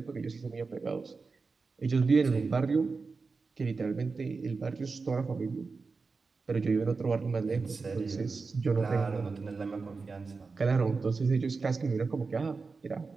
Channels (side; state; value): left; quieter; 4.4 dB